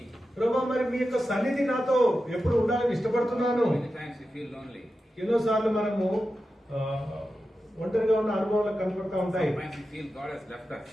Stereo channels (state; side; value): normal; both; correlation 0.91